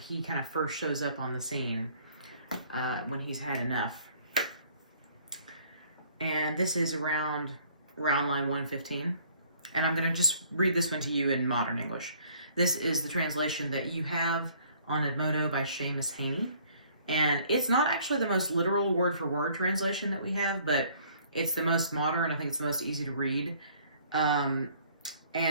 he kind of first shows up on the scene, when he's had enough. And this is around line 115. And I'm going to just read this one to you in modern English. This is the translation that you have on Edmodo by Seamus Heaney. And it's not actually the most literal word-for-word translation that we have, but it's the most modern. I think it's the most easy to read.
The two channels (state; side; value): inverted; both; correlation -0.58